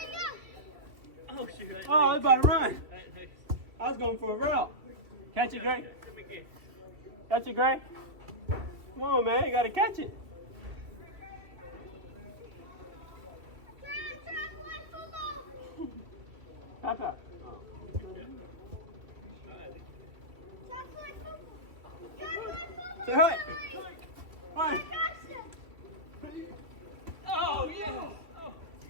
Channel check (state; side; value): late; left; 2.7 ms